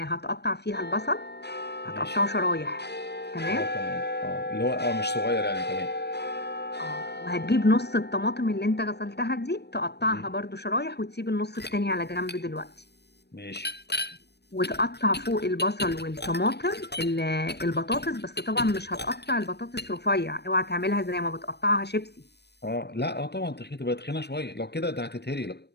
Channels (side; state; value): right; late; 0.49 ms